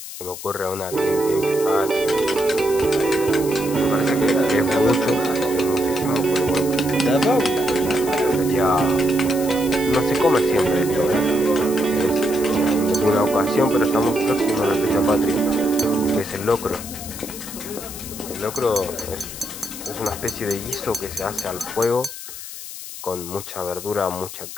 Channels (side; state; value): left; noise; hiss, 11 dB below the sound